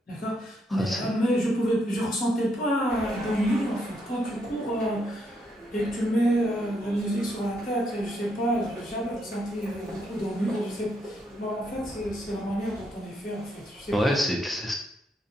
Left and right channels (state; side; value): normal; both; correlation 0.76